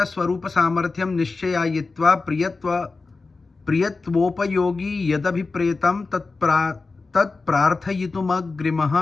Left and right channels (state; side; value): quieter; right; 3.9 dB